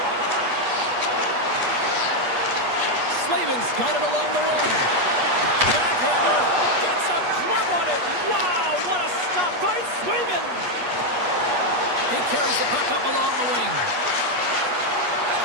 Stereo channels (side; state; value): left; late; 8.3 ms